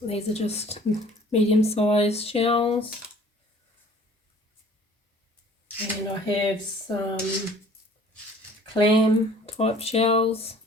These are just medium-sized shells. And I have some clam type shells.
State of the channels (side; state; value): both; normal; correlation 0.51